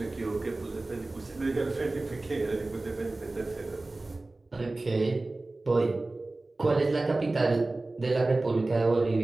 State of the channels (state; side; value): quieter; left; 3.0 dB